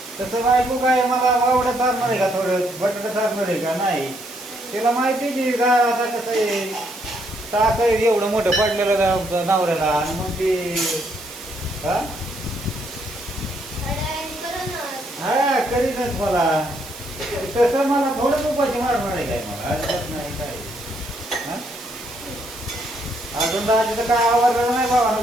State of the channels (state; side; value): noise; right; hiss, 16 dB below the sound